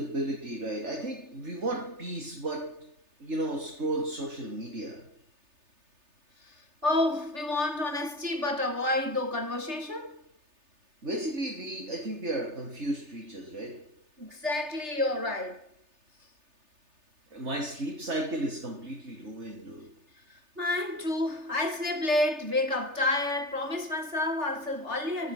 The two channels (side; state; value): left; late; 3.3 ms